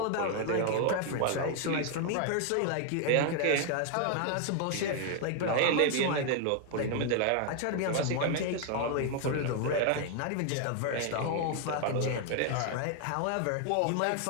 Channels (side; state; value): both; different; correlation 0.00